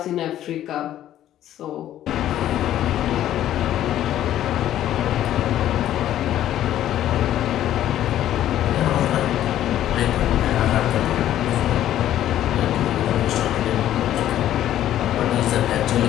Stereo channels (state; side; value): quieter; right; 12.2 dB